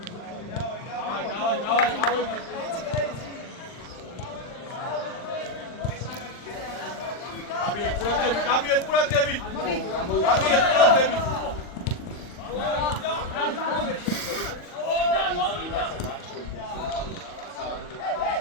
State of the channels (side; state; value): right; late; 40 ms